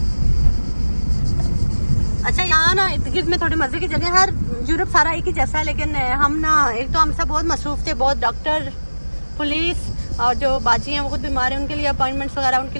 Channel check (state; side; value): inverted; both; correlation -1.00